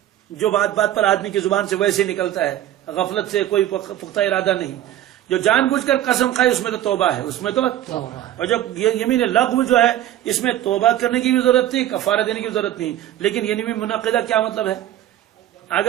جو بات بات پر آدمی کی زبان سے ویسے نکلتا ہے, غفلت سے کوئی پختہ ارادہ نہیں. جو جان بوجھ کر قسم کھائے اس میں تو توبہ ہے, اس میں تو. اور جب یہ یمین لغو جو ہے اس میں توبہ کرنے کی بھی ضرورت نہیں, کفارہ دینے کی بھی ضرورت نہیں. لیکن یمین منعقدہ کیا مطلب ہے؟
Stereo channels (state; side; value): quieter; left; 12.5 dB